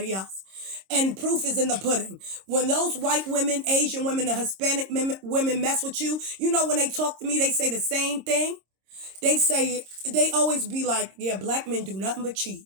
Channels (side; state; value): left; late; 26 ms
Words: else. And proof is in the pudding. When those white women, Asian women, and Hispanic women mess with you, you know, when they talk to me, they say the same thing. They always be like, yeah, black men do nothing but cheat.